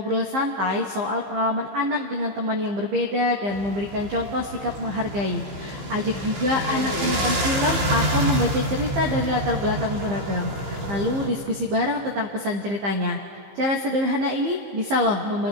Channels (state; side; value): late; left; 15 ms